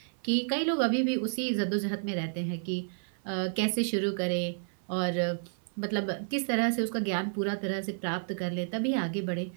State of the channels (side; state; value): left; silent; 56 dB below the other